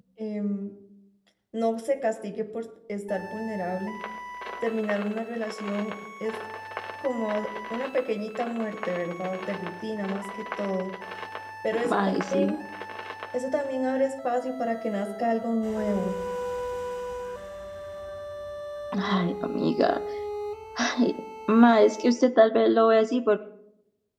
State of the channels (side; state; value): both; identical; correlation 1.00